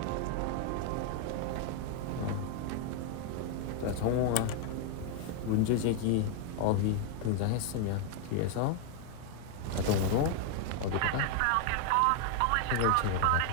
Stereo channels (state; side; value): different; both; correlation 0.00